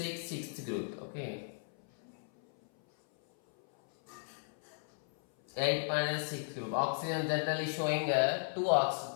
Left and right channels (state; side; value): silent; right; 54 dB below the other